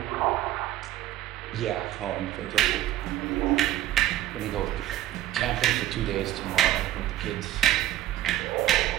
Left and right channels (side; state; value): left; quieter; 13.6 dB